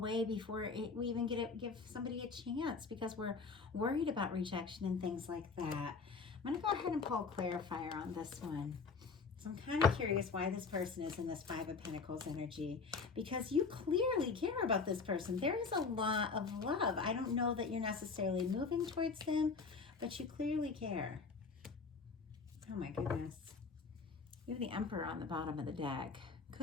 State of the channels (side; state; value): right; quieter; 4.8 dB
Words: before we even give somebody a chance because we're worried about rejection and things like that. I'm going to go ahead and pull a clarifier on this one. So I'm kind of curious why this person is in this 5 of Pentacles energy, because you clearly care about this person. There is a lot of love. I don't know that you're necessarily moving towards them, but you clearly care. Oh my goodness. You have the Emperor on the bottom of the deck.